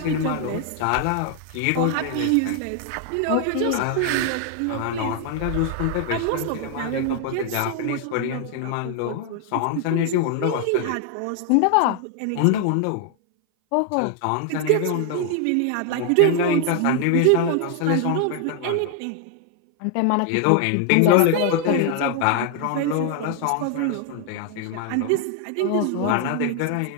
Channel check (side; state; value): both; different; correlation 0.00